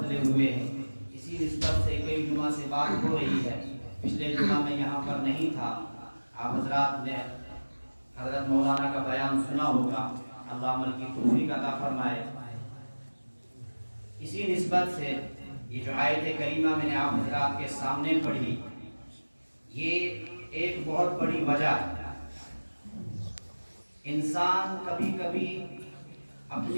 ہوئے ہیں. اسی نسبت سے کئی جمعہ سے بات ہو رہی ہے. پچھلے جمعہ میں یہاں پر نہیں تھا. آپ حضرات نے حضرت مولانا کا بیان سنا ہوگا. اللہ عمل کی توفیق عطا فرمائے. اسی نسبت سے یہ جو آیت کریمہ میں نے آپ حضرات کے سامنے پڑھی، یہ ایک بہت بڑی وجہ ہے. انسان کبھی کبھی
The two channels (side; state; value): both; inverted; correlation -1.00